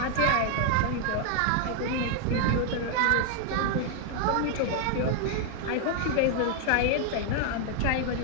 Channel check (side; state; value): both; different; correlation 0.00